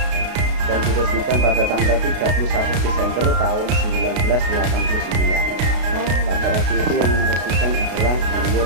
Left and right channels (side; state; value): left; late; 33 ms